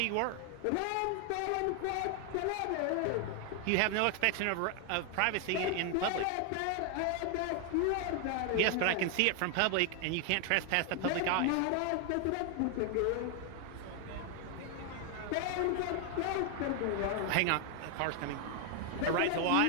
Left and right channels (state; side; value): different; both; correlation 0.00